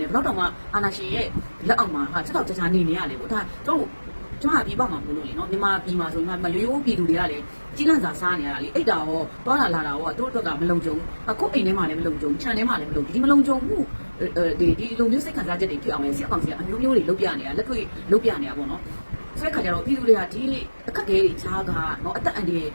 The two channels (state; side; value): inverted; both; correlation -1.00